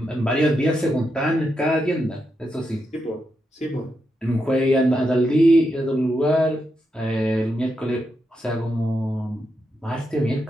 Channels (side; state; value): both; normal; correlation 0.84